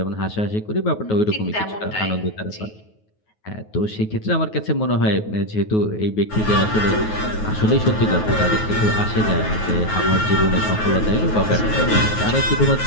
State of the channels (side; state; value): right; late; 9.4 ms